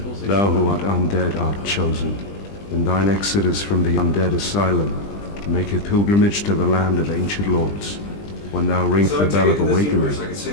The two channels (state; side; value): late; right; 20 ms